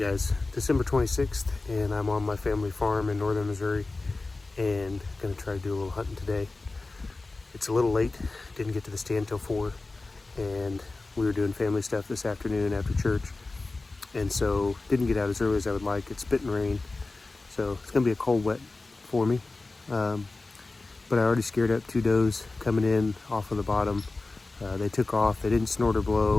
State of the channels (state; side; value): quieter; right; 3.4 dB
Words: December 26th, and I'm on my family farm in northern Missouri and gonna try to do a little hunting today. It's a little late, didn't get to the stand till 4, and we were doing family stuff this afternoon after church, and so didn't get out as early as I would like. It's spitting rain, so it's gonna be a cold wet for me. But I already scared up 2 does coming in off of the bottom. They took off, they didn't snort or